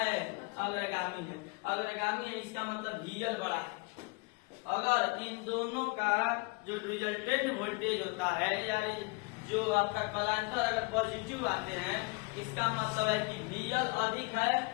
अग्रगामी है। अग्रगामी है इसका मतलब VL बड़ा है। अगर इन दोनों का जो रिजल्टेंट वोल्टेज होता है या जो आपका कलांतर अगर पॉजिटिव आते हैं इसका मतलब है कि VL अधिक है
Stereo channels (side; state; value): right; quieter; 29.1 dB